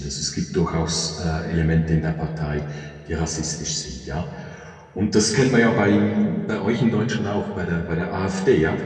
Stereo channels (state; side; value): identical; both; correlation 1.00